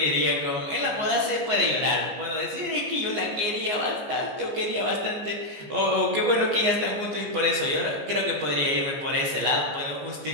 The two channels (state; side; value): late; left; 14 ms